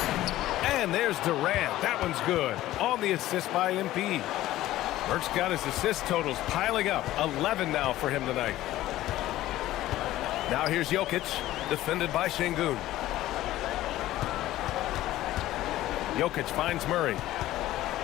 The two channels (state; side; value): quieter; right; 15.1 dB